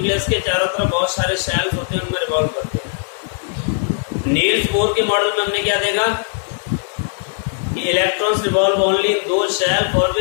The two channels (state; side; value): silent; right; digital silence